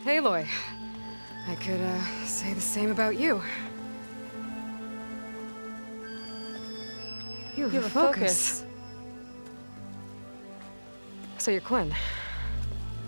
Aloy. I could, say the same about you. You have a focus. So you're Quinn.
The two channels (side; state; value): both; inverted; correlation -1.00